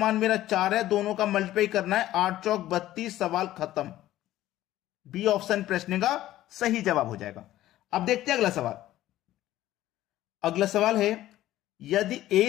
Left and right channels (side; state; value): right; quieter; 14.4 dB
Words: मेरा 4 है, दोनों का मल्टीप्लाई करना है, 8 चौक 32, सवाल खत्म। बी ऑप्शन प्रश्न का सही जवाब हो जाएगा। अब देखते हैं अगला सवाल। अगला सवाल है, यदि